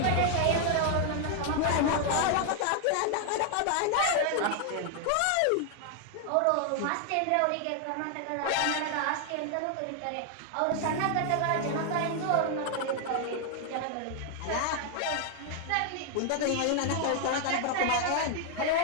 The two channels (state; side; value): different; both; correlation 0.00